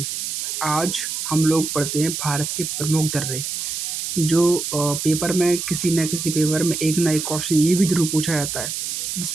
आज हम लोग पढ़ते हैं भारत के प्रमुख दर्रे, जो पेपर में किसी न किसी पेपर में एक ना एक क्वेश्चन ये भी ज़रूर पूछा जाता है,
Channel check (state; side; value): noise; right; hiss, 4 dB below the sound